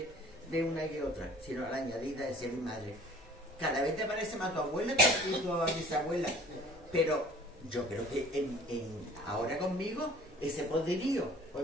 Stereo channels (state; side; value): normal; both; correlation 0.49